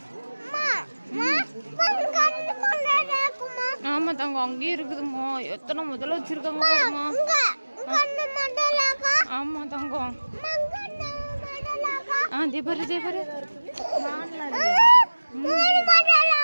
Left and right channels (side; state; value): both; inverted; correlation -1.00